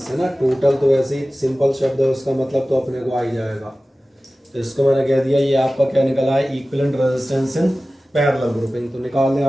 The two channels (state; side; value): normal; both; correlation 0.96